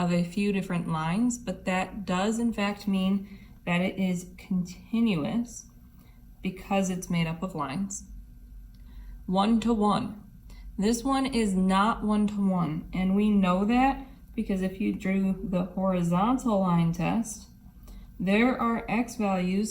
a few different lines, but that does in fact mean that it is continuous because it's made up of lines. 1-to-1. This one is not 1-to-1, and we know that because if you drew the horizontal line test, there are x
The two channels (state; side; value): identical; both; correlation 1.00